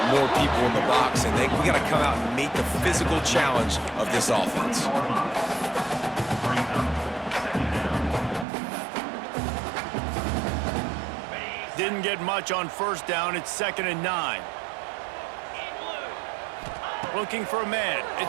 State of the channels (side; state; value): left; drops out; at 8.5 s